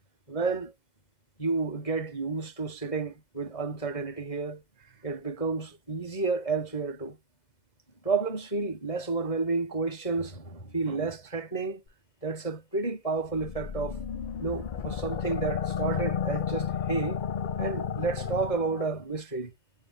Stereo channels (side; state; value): right; late; 1.7 ms